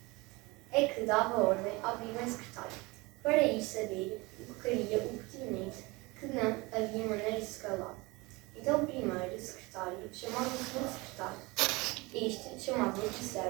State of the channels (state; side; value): quieter; left; 24.2 dB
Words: É que dava ordem ao primeiro secretário para ir saber o que queria o pertinente, que não havia maneira de se calar. Então o primeiro secretário chamava o segundo secretário. Este chamava o